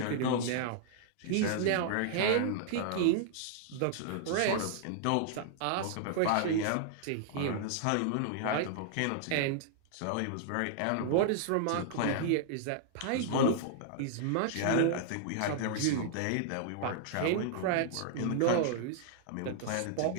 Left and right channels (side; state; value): both; different; correlation -0.01